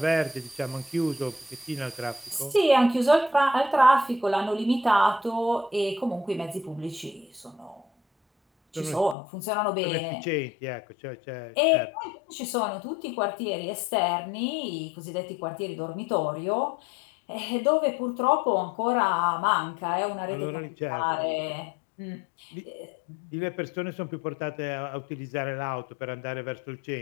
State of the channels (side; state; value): right; drops out; at 9.2 s